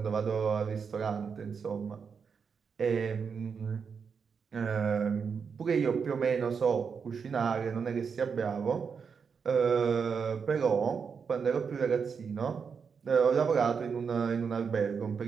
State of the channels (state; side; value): quieter; left; 6.1 dB